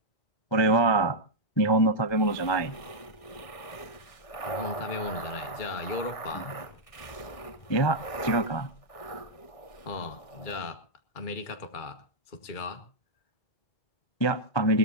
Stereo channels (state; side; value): late; right; 1.6 ms